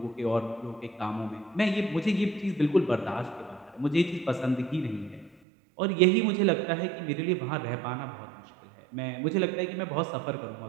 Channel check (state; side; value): drops out; left; at 5.4 s